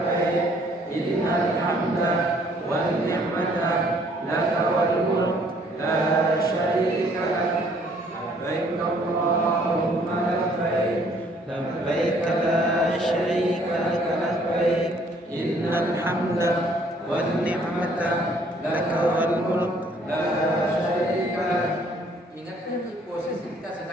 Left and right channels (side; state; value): both; normal; correlation 0.62